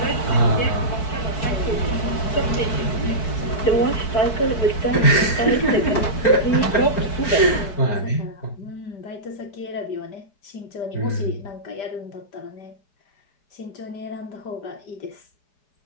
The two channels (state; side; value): late; right; 4.6 ms